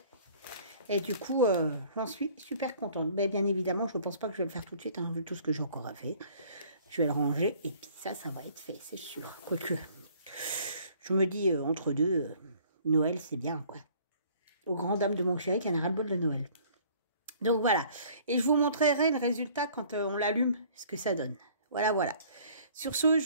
Et du coup, j'en suis super contente. Mais bien évidemment, je ne pense pas que je vais le faire tout de suite, hein, vu tout ce que j'ai encore à faire. Je vais le ranger et puis ça va être fait, c'est sûr. Quoique, je me dis, entre deux, Noël, c'est bien, quoi. Aux grandes dames de mon chéri qui en a ras-le-bol de Noël. Donc voilà. Et je vous montrerai le résultat quand on l'allume, ce que ça donne. Voilà, voilà. Sur ce,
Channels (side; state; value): both; inverted; correlation -0.55